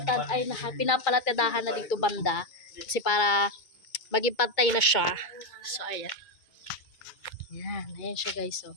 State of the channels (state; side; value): late; right; 2.2 ms